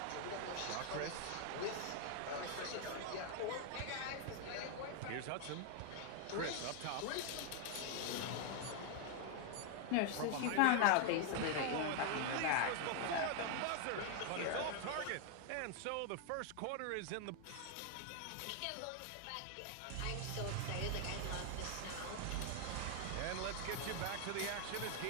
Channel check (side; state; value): both; different; correlation 0.00